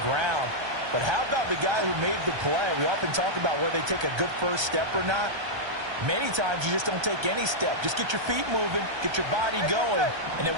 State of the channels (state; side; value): late; left; 1.3 ms